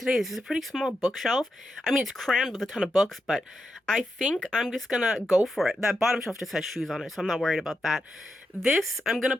This is a pretty small bookshelf. I mean, it's crammed with a ton of books, but I think I'm just gonna go for it. That bottom shelf just has shoes on it, so I'm not worried about that. This I'm gonna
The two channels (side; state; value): both; normal; correlation 0.86